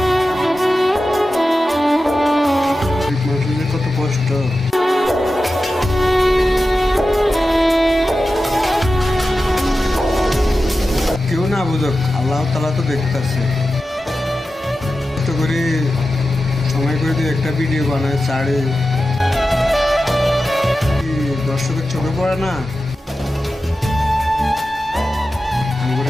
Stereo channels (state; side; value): normal; both; correlation 0.93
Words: মানুষের কত কষ্ট, কেউ না বুঝুক, আল্লাহ তাআলা তো দেখতেছে। কষ্ট করে সময় করে দিয়ে একটা ভিডিও বানায় ছাড়ে, দর্শকের চোখে পড়ে না?